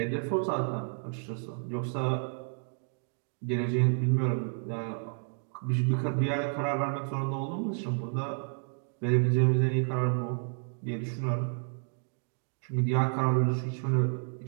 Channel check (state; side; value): silent; left; 57 dB below the other